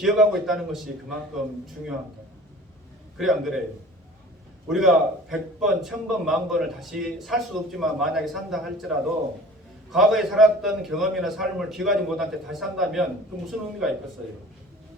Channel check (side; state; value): both; normal; correlation 0.44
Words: 있다는 것이 그만큼 중요한 거예요. 그래 안 그래요? 우리가 100번, 1000번, 10,000번을 다시 살 수도 없지만 만약에 산다 할지라도 과거에 살았던 경험이나 삶을 기억하지 못한 채 다시 산다면 그 무슨 의미가 있겠어요?